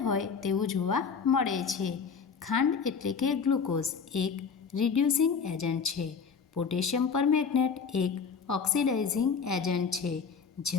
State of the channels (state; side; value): quieter; right; 5.9 dB